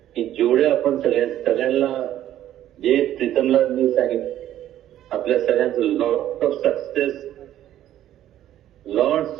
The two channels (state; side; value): quieter; left; 12.3 dB